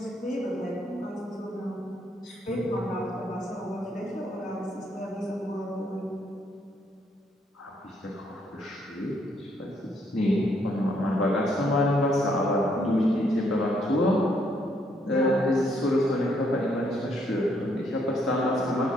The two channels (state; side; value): normal; both; correlation 0.71